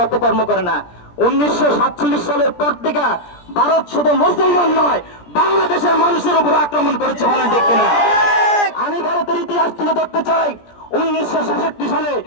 অপকর্ম করে না। 1947 সালের পর থেকে ভারত শুধু মুসলমান নয়, বাংলাদেশের মানুষের উপর আক্রমণ করেছে, বলেন ঠিক কিনা? আমি ভারতের ইতিহাস তুলে ধরতে চাই। 1966 সালে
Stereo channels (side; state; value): right; late; 17 ms